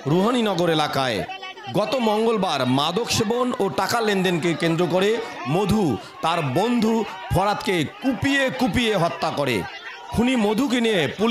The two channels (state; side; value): identical; both; correlation 1.00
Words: রুহানীনগর এলাকায়। গত মঙ্গলবার মাদক সেবন ও টাকা লেনদেনকে কেন্দ্র করে মধু তার বন্ধু ফরাদকে কুপিয়ে কুপিয়ে হত্যা করে। খুনি মধুকে নিয়ে